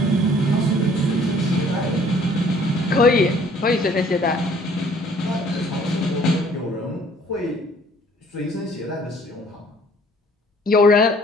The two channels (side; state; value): both; normal; correlation 0.57